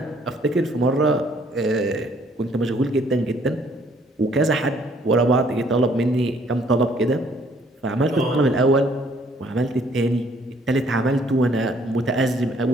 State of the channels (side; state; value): both; normal; correlation 0.63